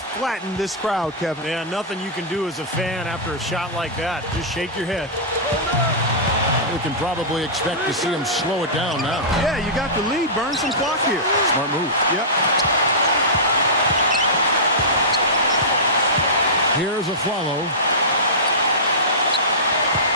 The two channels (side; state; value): both; normal; correlation -0.17